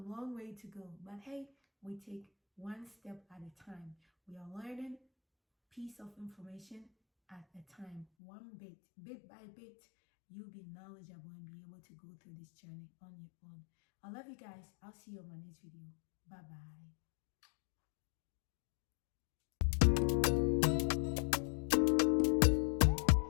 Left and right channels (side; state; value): right; drops out; at 8.1 s